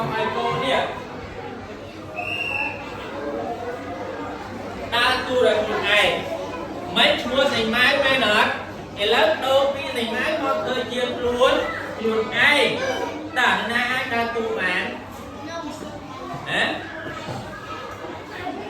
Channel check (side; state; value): both; identical; correlation 1.00